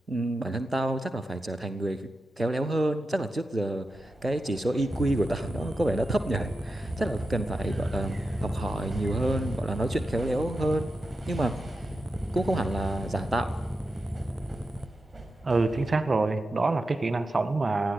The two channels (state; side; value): normal; both; correlation 0.90